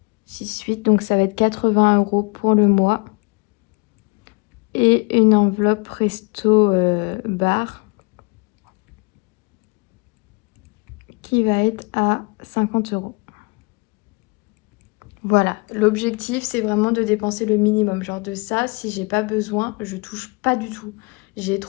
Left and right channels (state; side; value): quieter; right; 29.6 dB